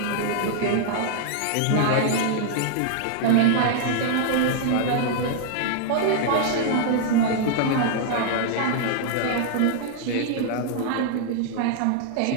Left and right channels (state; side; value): different; both; correlation 0.00